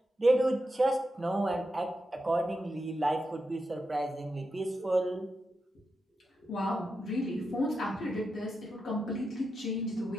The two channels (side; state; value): both; normal; correlation 0.87